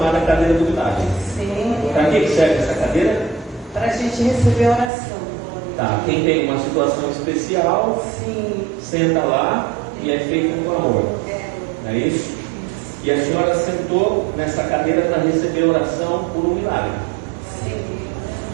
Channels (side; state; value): left; drops out; at 4.9 s